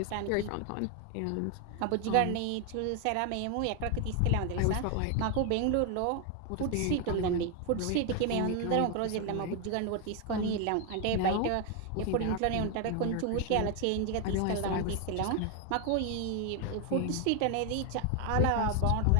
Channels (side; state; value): both; different; correlation 0.01